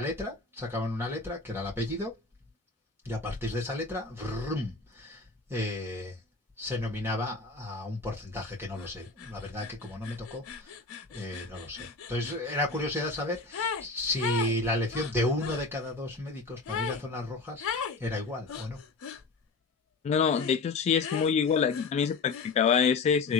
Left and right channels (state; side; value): quieter; right; 4.0 dB